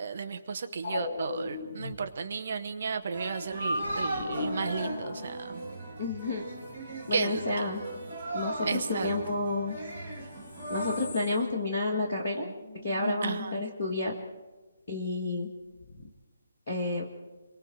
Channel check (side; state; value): both; inverted; correlation -0.71